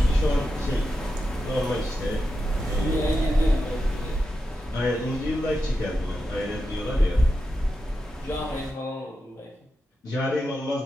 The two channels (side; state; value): both; normal; correlation 0.89